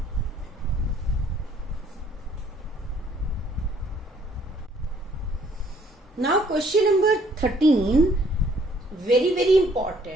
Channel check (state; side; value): normal; both; correlation 0.63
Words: Now question number 13, very